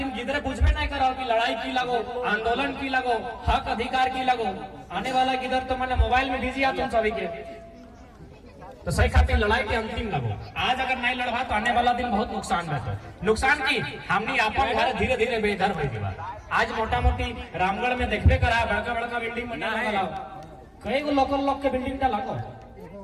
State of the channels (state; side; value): identical; both; correlation 1.00